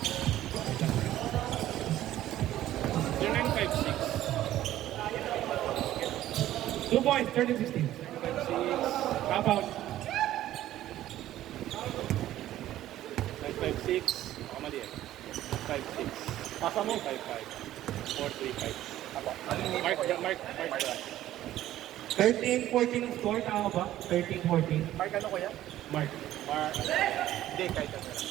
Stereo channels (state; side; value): quieter; left; 13.6 dB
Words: Yung 956. 2 points, 13-16. 956. Half out. 956. Ako mali eh. 56. Pasa mo. 55. 435. Ako. Mark. 13-14 score, tama ba? 13-14. Mark ano ko yan? Mark. Hindi, kahit ano.